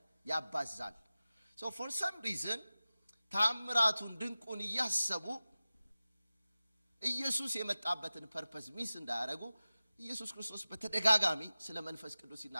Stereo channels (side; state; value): both; inverted; correlation -0.96